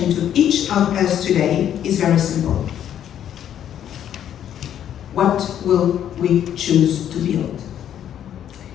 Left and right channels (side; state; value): right; quieter; 10.2 dB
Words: to each of us today is very simple. What will we choose to build?